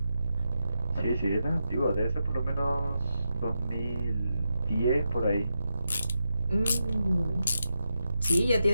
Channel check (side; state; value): both; inverted; correlation -0.86